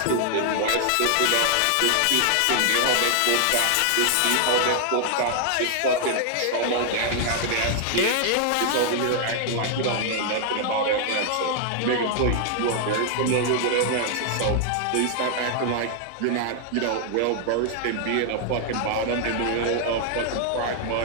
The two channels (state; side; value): different; both; correlation 0.00